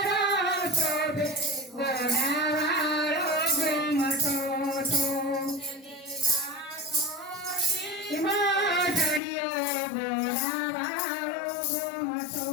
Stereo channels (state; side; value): drops out; right; at 9.2 s